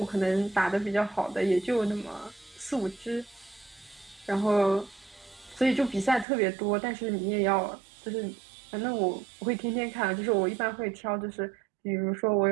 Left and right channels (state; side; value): drops out; left; at 6.2 s